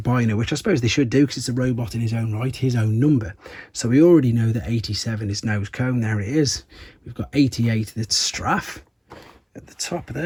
which I suppose they should do because it's a robot in his own right, his own number. So we already know that 87 is Nosecone. There it is. We've got 88, that's Straff at the top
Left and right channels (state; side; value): identical; both; correlation 1.00